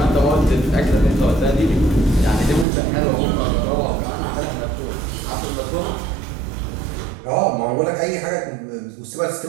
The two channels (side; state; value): left; drops out; at 2.7 s